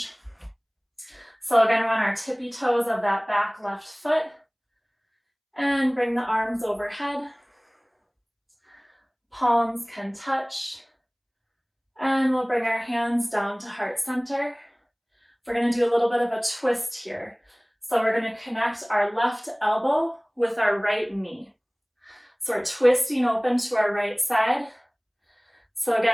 So again, we're on our tippy toes of that back left foot. And bring the arms overhead. Palms can touch. And we'll bring our hands down to heart center. We're going to do a little bit of a twist here. So we're going to connect our left elbow with our right knee. So we're twisting open to our right side. So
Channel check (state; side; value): identical; both; correlation 1.00